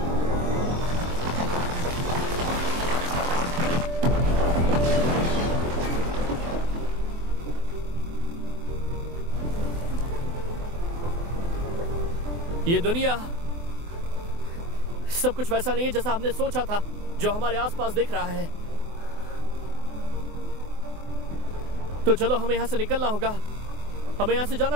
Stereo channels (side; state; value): left; late; 24 ms